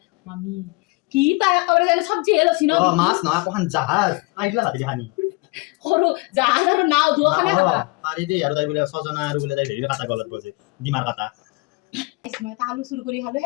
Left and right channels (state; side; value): quieter; right; 26.1 dB